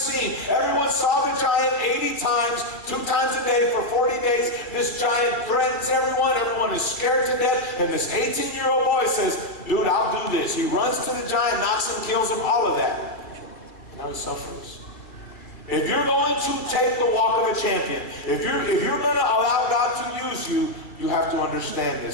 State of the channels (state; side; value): late; right; 2.3 ms